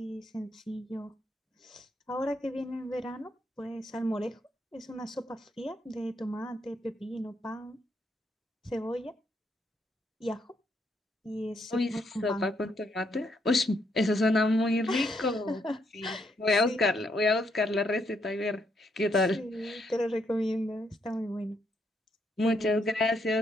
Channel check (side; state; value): both; normal; correlation 0.75